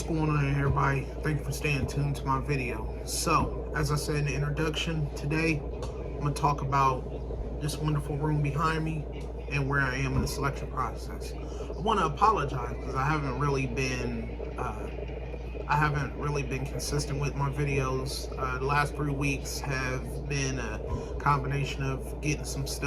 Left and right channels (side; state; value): both; identical; correlation 1.00